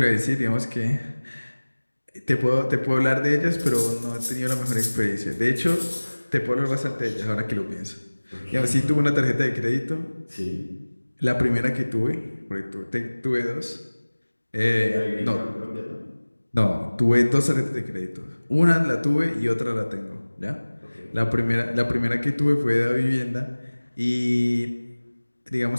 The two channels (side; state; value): both; inverted; correlation -1.00